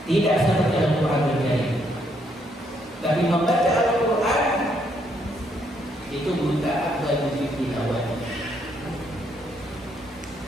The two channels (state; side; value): normal; both; correlation 0.73